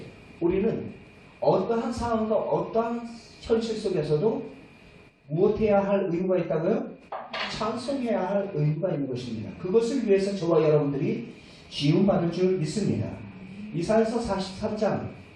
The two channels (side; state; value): both; identical; correlation 1.00